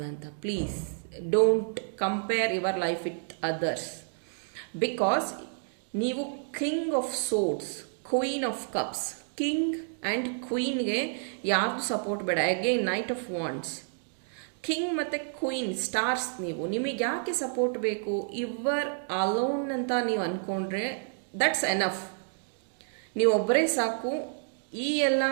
Please don't compare your life with others. Because ನೀವು king of swords, queen of cups, king and ಕ್ವೀನ್ಗೆ ಯಾರ್ದು ಸಪೋರ್ಟ್ ಬೇಡ. Again knight of wands, king ಮತ್ತು ಕ್ವೀನ್ ಸ್ಟಾರ್ಸ್. ನಿಮಗೆ ಯಾಕೆ ಸಪೋರ್ಟ್ ಬೇಕು? ಯುವರ್ ಅಲೋನ್ ಅಂತ ನೀವು ಅಂದ್ಕೊಂಡ್ರೆ ದಟ್ಸ್ ಎನಫ್. ನೀವು ಒಬ್ಬರೇ ಸಾಕು ಈ ಎಲ್ಲ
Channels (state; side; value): silent; left; digital silence